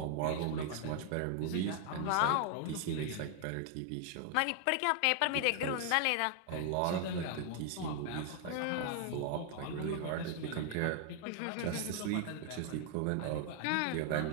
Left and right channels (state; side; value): different; both; correlation 0.00